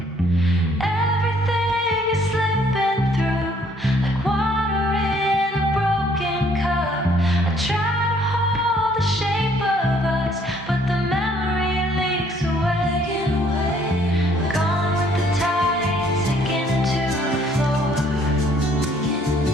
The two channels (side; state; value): both; normal; correlation 0.63